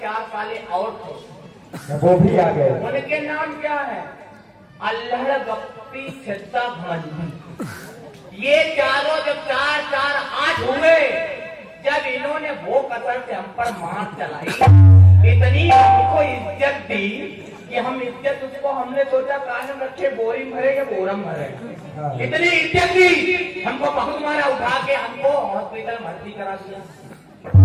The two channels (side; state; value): both; identical; correlation 1.00